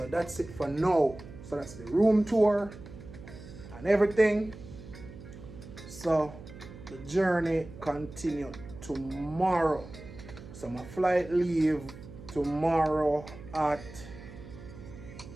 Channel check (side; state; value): right; noise; hum, 15 dB below the sound